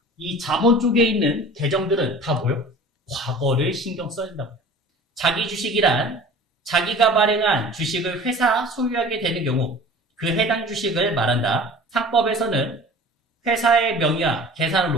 이 자본 쪽에 있는 계정들은 다 뭐요? 과거를 신경 써야 된다고요. 자기 주식이란 자기가 발행한 주식을 회사 소유하게 되는 경우 그 해당 주식을 말한다. 상법에서는 회사의 명의와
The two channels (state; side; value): normal; both; correlation 0.42